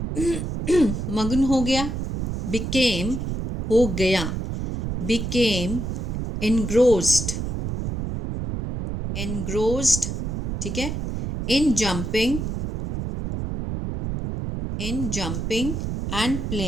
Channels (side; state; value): right; noise; rumble, 3 dB below the sound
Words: मग्न हो गया, बिकेम हो गया, बिकेम एनग्रोस्ड, ठीक है, इन जंपिंग एंड